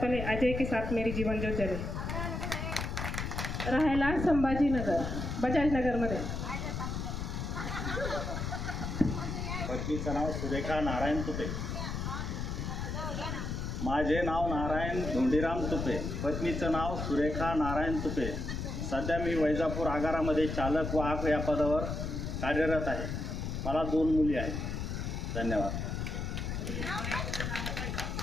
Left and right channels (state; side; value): noise; left; rumble, 3 dB below the sound